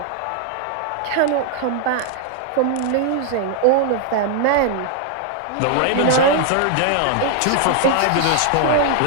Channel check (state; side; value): different; both; correlation 0.00